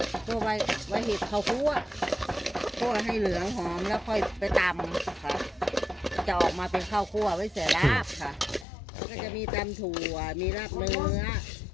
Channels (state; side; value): drops out; right; at 8.7 s